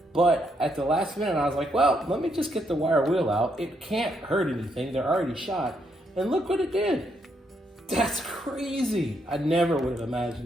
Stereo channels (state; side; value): normal; both; correlation 0.76